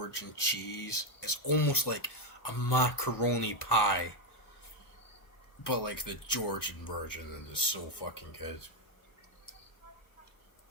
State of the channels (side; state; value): right; late; 1.2 ms